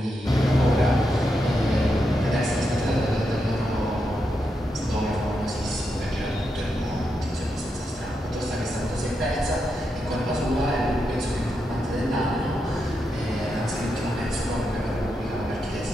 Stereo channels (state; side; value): normal; both; correlation 0.84